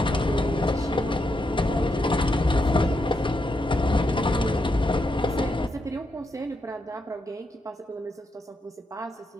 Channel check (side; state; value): both; normal; correlation 0.82